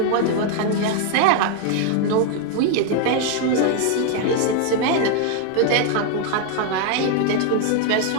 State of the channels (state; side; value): different; both; correlation 0.00